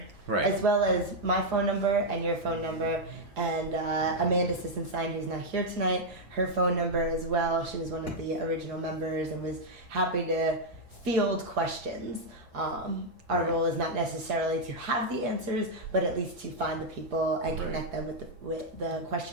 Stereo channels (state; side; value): normal; both; correlation -0.02